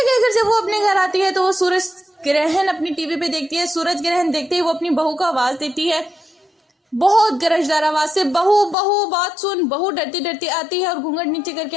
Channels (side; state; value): right; drops out; at 8.8 s